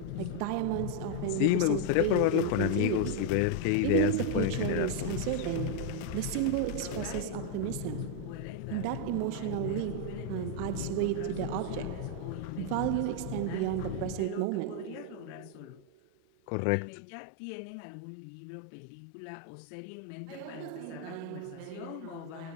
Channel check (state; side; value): different; both; correlation 0.01